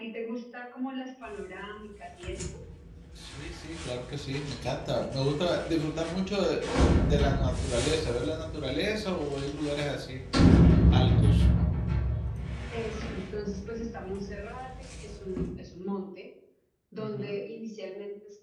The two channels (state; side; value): identical; both; correlation 1.00